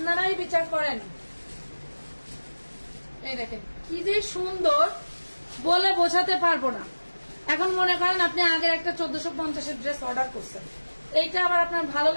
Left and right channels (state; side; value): inverted; both; correlation -1.00